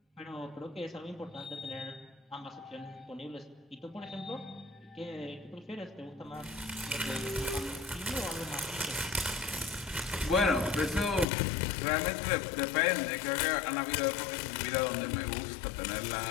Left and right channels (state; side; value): drops out; right; at 11.2 s